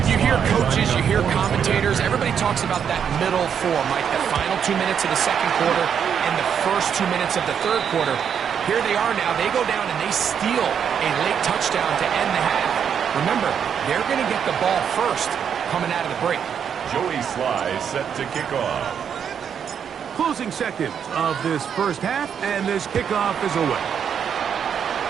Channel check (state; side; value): quieter; left; 7.8 dB